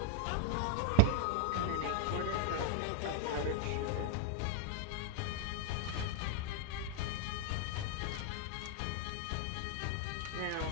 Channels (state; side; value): different; both; correlation 0.00